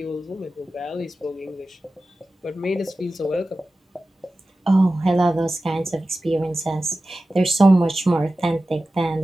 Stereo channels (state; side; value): normal; both; correlation 0.95